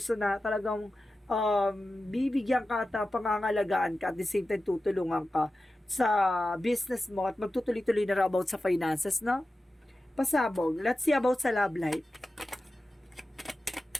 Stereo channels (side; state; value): both; normal; correlation 0.93